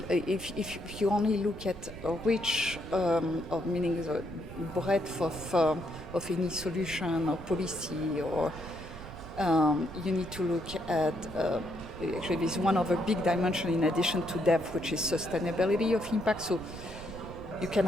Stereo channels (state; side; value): noise; right; rumble, 13 dB below the sound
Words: if you only look at a reach of meaning the breadth of any solution or policy, or you need to look at actually there's one other big dimension in addition to depth, which is sustainability of impact. So you can